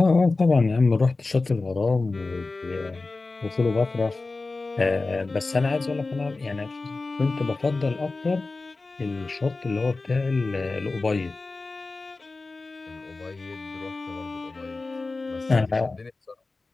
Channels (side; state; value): right; quieter; 3.6 dB